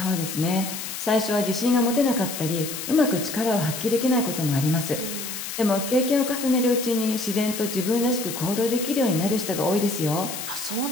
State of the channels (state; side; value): noise; left; hiss, 7 dB below the sound